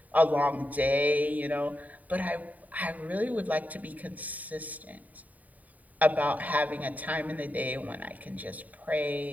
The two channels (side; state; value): left; late; 0.073 ms